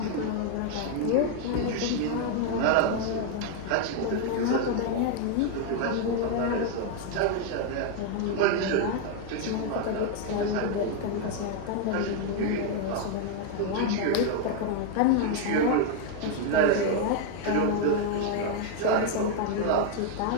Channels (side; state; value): both; different; correlation 0.00